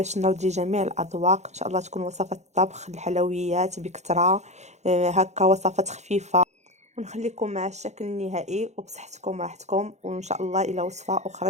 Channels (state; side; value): late; left; 0.33 ms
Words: نرضي جميع الاذواق. ان شاء الله تكون وصفات الطبخ الحلويات بكثره، هكا وصفات خفيفه. ونخليكم مع الشكل النهائي وبصحتكم راحتكم، وان شاء الله الى وصفه